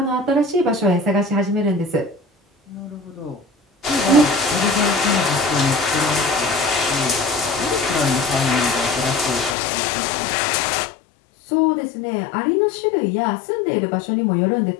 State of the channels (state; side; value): drops out; right; at 9.6 s